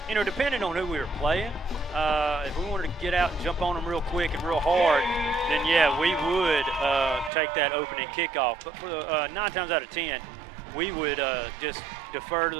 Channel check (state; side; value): drops out; left; at 7.3 s